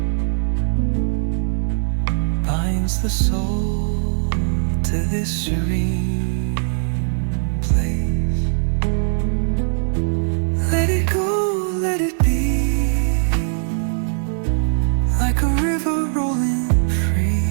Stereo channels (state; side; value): silent; left; digital silence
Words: binds the soul to this serene place. Let it go, let it be, like a river rolling free.